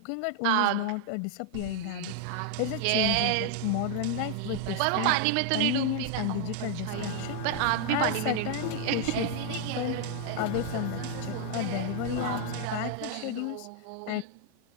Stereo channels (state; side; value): different; both; correlation 0.00